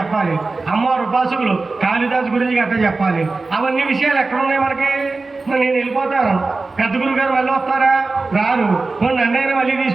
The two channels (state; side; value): quieter; left; 3.7 dB